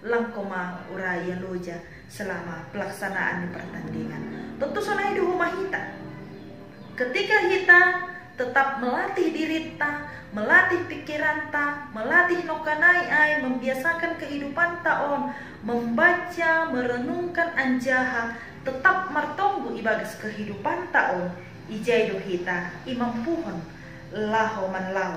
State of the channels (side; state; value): both; identical; correlation 1.00